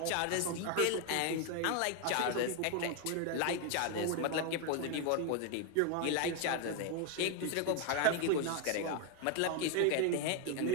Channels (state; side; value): different; both; correlation 0.01